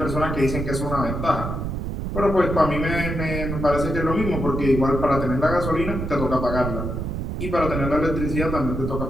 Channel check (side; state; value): right; noise; rumble, 3 dB below the sound